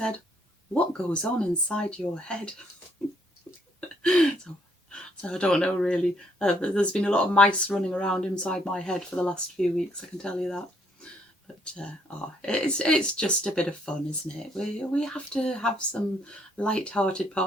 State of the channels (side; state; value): both; normal; correlation 0.69